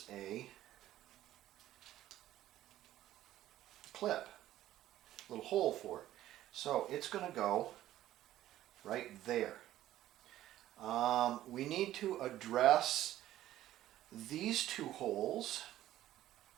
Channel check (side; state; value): left; quieter; 13.7 dB